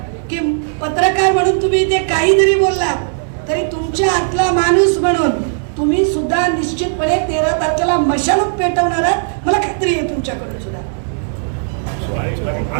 की पत्रकार म्हणून तुम्ही ते काही जरी बोललात तरी तुमच्या आतला माणूस म्हणून तुम्ही सुद्धा निश्चितपणे 13 तारखेला मशालच पेटवणार आहात. मला खात्री आहे तुमच्याकडून सुद्धा.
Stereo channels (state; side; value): silent; left; digital silence